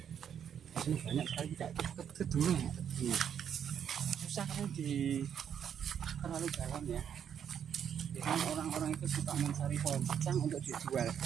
Di sini banyak sekali tidak ke dulu ya. Susah kan di terlalu dalam ya. Kan orang-orang itu suka mencari pohon secang untuk dijual. Nah,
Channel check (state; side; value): quieter; left; 8.5 dB